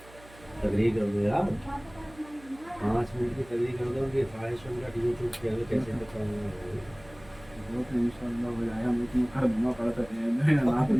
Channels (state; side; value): noise; right; hum, 22 dB below the sound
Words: تقریر کر دو یار 5 منٹ کی تقریر کر دو کہ 500 منٹ یوٹیوب پہ کیسے بتاؤں ان شاء اللہ ہو جائے ہم اتنا کر دوں پڑتا ہے رات